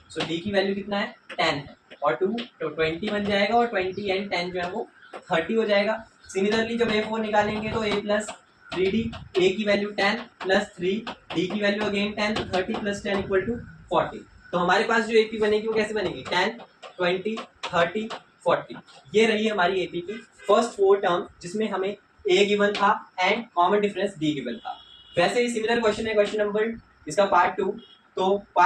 so D की वैल्यू कितना है 10 है, और 2 तो 20 बन जाएगा, और 20 एंड 10 जो है वो 30 हो जाएगा। सिमिलरली जब A4 निकालेंगे तो A प्लस 3D, A की वैल्यू 10 प्लस 3, D की वैल्यू अगेन 10, तो 30 प्लस 10 इक्वल टू 40। तो हमारे पास जो AP बनेगी वो कैसे बनेगी, 10, 20, 30, 40। ये रही हमारी AP की फर्स्ट 4 टर्म, जिसमें हमें A गिवन था and common difference D given था। वैसे ही सिमिलर क्वेश्चन है क्वेश्चन नंबर इसका पार्ट 2। तो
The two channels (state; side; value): identical; both; correlation 1.00